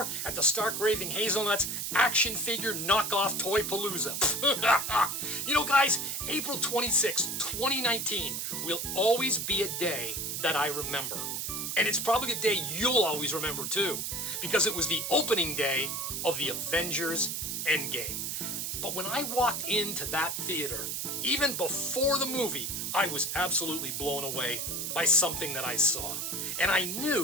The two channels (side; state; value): right; noise; hiss, 3 dB below the sound